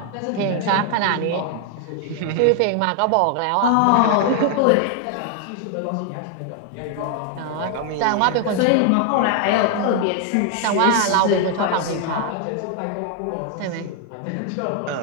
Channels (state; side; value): different; both; correlation 0.00